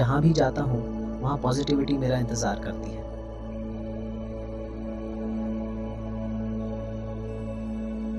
भी जाता हूं वहां पॉजिटिविटी मेरा इंतजार करती है।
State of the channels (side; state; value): both; identical; correlation 1.00